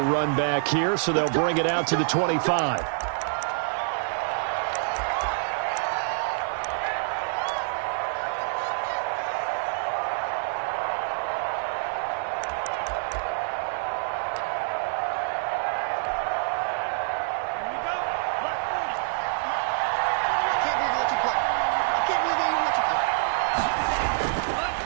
run back here, so they'll bring it out to the 25.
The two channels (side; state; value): left; silent; 56 dB below the other